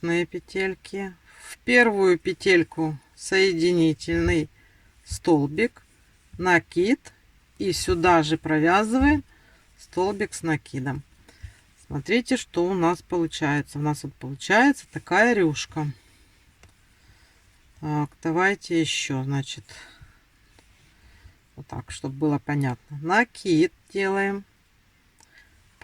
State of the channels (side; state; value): both; identical; correlation 1.00